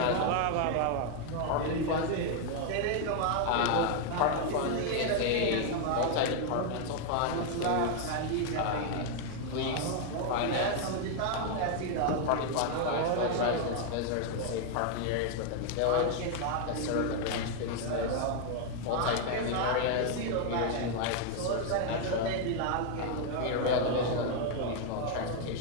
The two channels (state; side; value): different; both; correlation 0.00